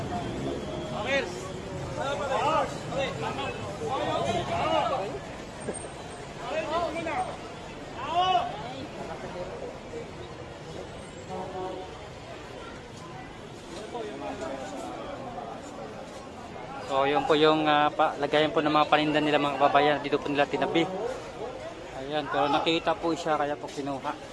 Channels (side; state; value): both; identical; correlation 1.00